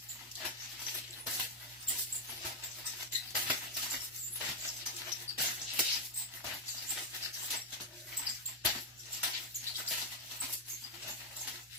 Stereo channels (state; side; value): normal; both; correlation 0.03